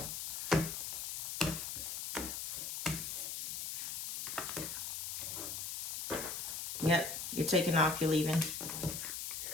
Yep, you're taking off, you're leaving.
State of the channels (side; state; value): left; noise; hiss, 4 dB below the sound